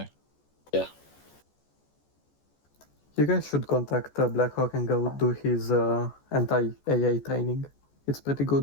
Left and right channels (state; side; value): late; right; 14 ms